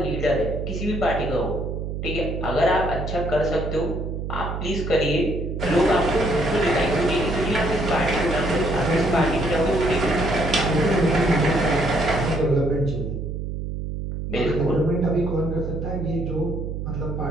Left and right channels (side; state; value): right; noise; hum, 5 dB below the sound